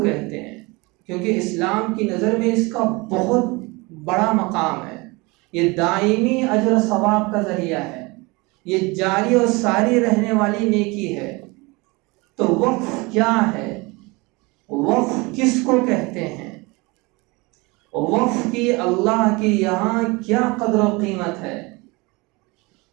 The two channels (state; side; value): quieter; left; 25.3 dB